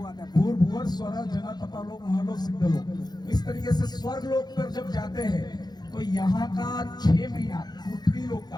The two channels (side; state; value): right; late; 0.20 ms